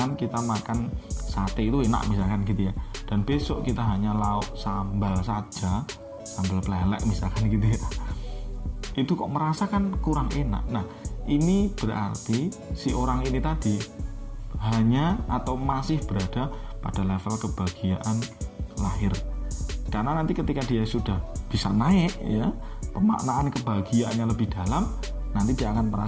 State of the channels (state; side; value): identical; both; correlation 1.00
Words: kita makan sate itu enak misalkan gitu ya, dan besok kita hanya lauk sambal saja, sambal pelelek misalkan gitu ya, itu kok merasakan kurang enak. Nah, ini berarti si orang ini tadi hanya atau masih berada pada level kebahagiaan lahir. Karena nanti ketika dia sudah bisa naik ya, pemaknaan kebahagiaannya lebih dalam, nanti dia akan